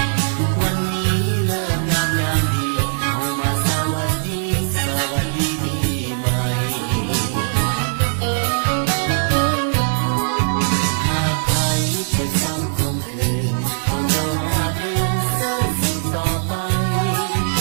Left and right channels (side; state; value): left; silent; 65 dB below the other